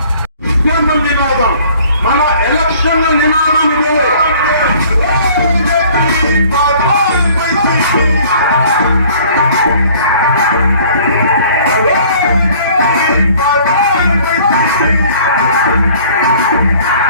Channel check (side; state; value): both; inverted; correlation -0.53